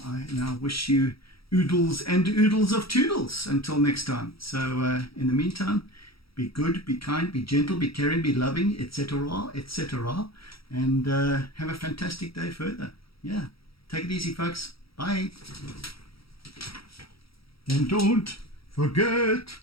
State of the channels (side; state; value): right; late; 0.75 ms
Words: now wish you oodles and oodles of toodles until next time. So in the meantime, be good, be kind, be gentle, be caring, be loving, etc., etc. And have a fantastic day further. Yeah, take it easy, folks. Bye. And don't forget